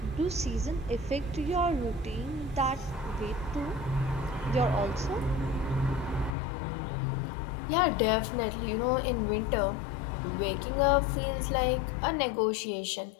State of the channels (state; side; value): drops out; right; at 6.4 s